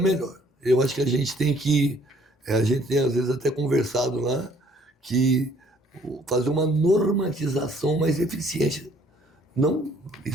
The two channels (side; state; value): both; normal; correlation 0.61